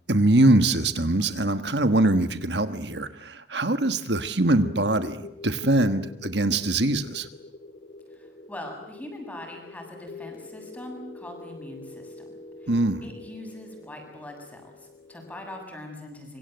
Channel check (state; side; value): normal; both; correlation 0.57